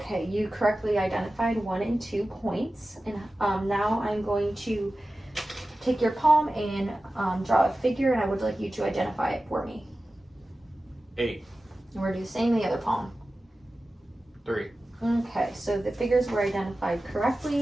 you correctly identified 1 and 2 points. And now I'm going to take your palm and draw a figure, and I would like you to identify it for me. 8. And we're going to do the same in the other palm. 3. Okay, so the figures were identified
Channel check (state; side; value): normal; both; correlation 0.95